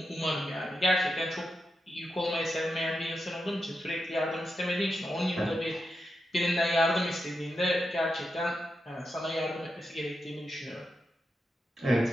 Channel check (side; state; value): both; normal; correlation 0.87